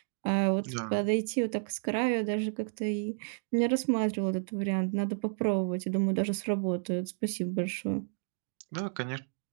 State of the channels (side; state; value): left; silent; digital silence